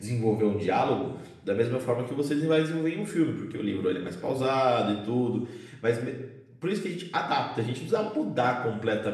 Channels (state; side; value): identical; both; correlation 1.00